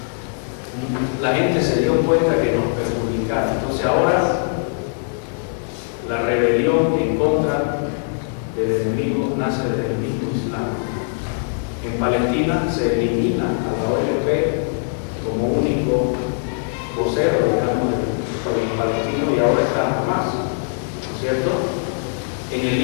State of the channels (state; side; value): silent; right; 65 dB below the other